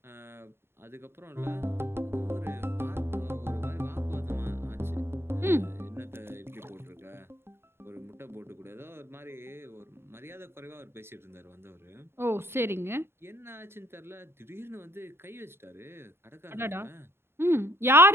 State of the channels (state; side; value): late; left; 0.11 ms